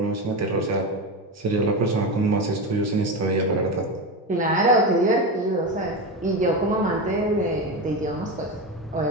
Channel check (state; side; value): normal; both; correlation 0.19